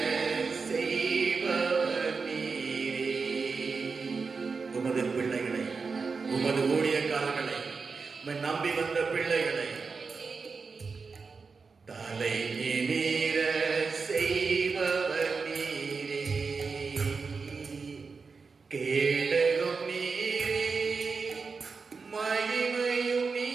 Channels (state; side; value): quieter; left; 4.8 dB